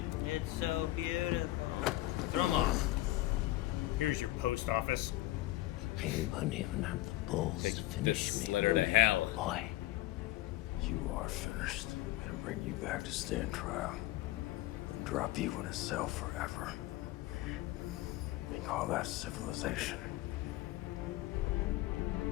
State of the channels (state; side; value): quieter; right; 17.0 dB